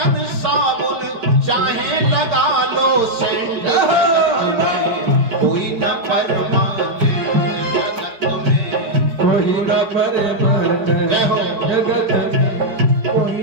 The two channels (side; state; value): left; late; 4.5 ms